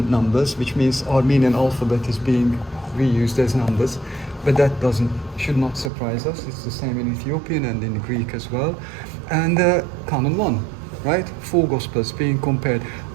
numbers, which means Armenian alphabet is being reused as numbers, but that should not surprise us. It's the same in Ethiopian and in Greek as well. And Canon 1, right? 4 Gospels being compared.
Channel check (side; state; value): left; drops out; at 5.9 s